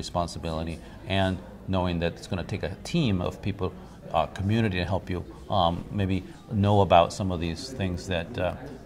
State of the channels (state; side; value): identical; both; correlation 1.00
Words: and knowing that it's going to take a team of people, community to help you maybe know about some of these things that